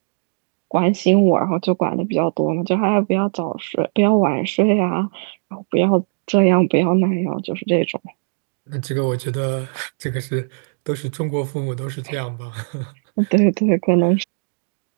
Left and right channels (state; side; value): silent; left; digital silence